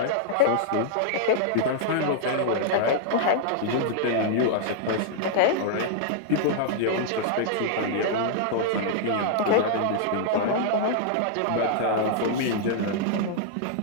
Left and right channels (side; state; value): both; different; correlation -0.01